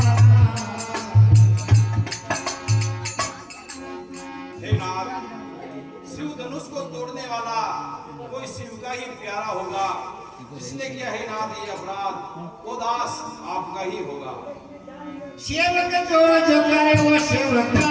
हे नाथ, शिव धनुष को तोड़ने वाला कोई शिव का ही प्यारा होगा। जिसने किया है नाथ ये अपराध, वो दास आपका ही होगा। सेवक जो करे वो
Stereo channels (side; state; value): both; identical; correlation 1.00